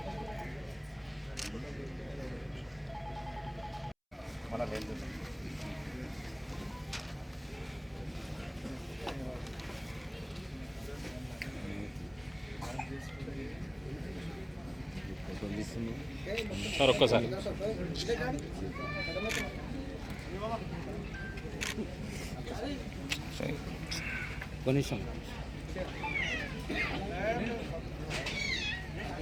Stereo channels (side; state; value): both; identical; correlation 1.00